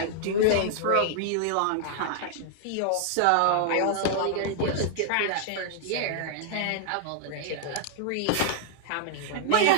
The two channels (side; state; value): both; different; correlation -0.01